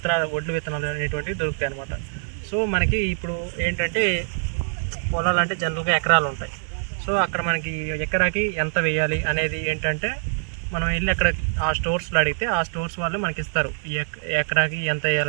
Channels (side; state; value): left; silent; digital silence